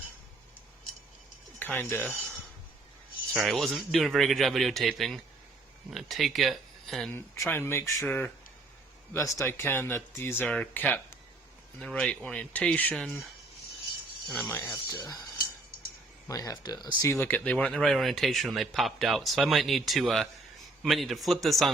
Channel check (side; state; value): left; quieter; 3.1 dB